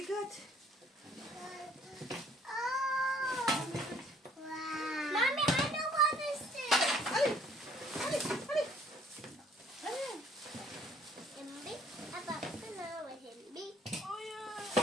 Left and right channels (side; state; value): both; normal; correlation 0.60